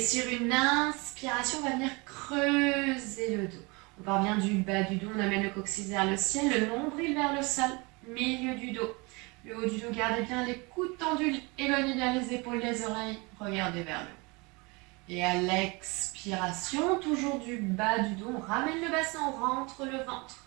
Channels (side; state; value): left; quieter; 27.2 dB